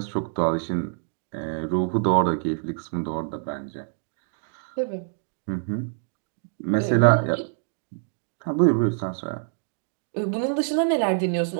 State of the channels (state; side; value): silent; left; digital silence